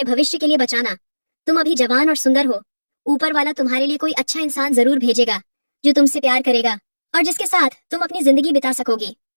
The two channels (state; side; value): inverted; both; correlation -1.00